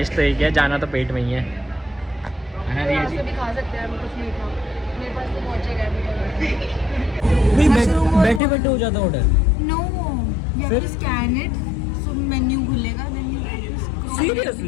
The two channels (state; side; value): drops out; right; at 8.4 s